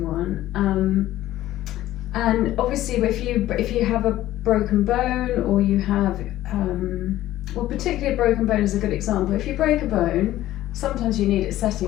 one. And obviously, if you have a broken bone, or you have, particularly a broken bone is a good example. If you break a bone, sometimes you need it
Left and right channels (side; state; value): right; quieter; 14.4 dB